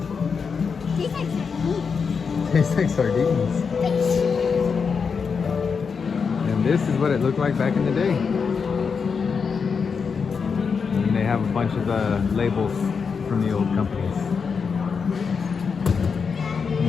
Tastes like sardines. Tastes like sardines. And this is what it looked like back in the day. And they have a bunch of labels from the old companies.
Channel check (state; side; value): quieter; right; 5.7 dB